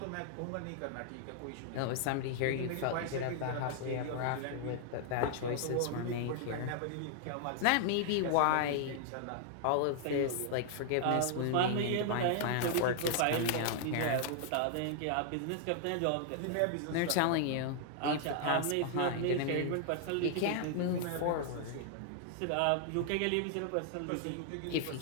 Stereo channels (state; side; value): different; both; correlation 0.00